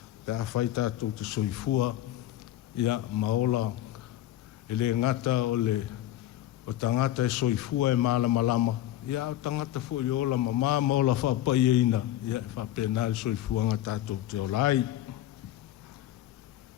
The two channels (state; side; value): quieter; right; 13.3 dB